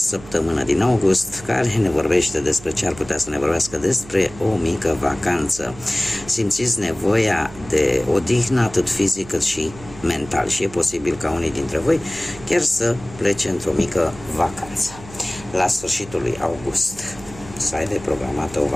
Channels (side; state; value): right; noise; hum, 18 dB below the sound